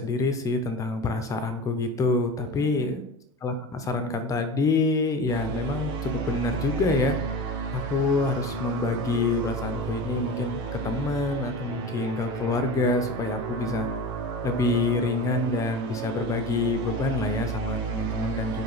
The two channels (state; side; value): normal; both; correlation 0.30